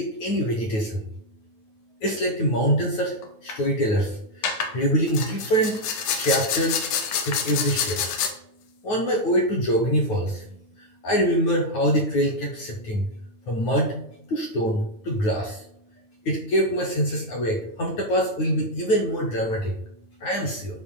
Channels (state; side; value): late; right; 9.7 ms